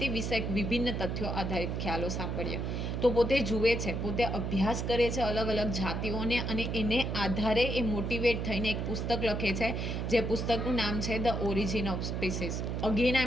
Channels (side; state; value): right; noise; hum, 2 dB below the sound